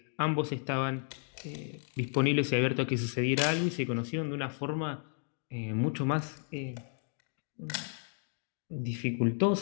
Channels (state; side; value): silent; right; 56 dB below the other